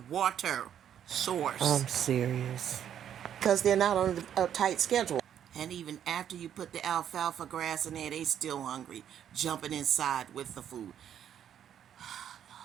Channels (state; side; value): quieter; left; 9.6 dB